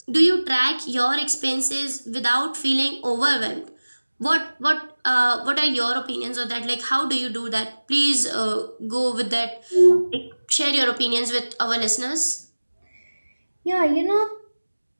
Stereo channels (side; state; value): both; inverted; correlation -1.00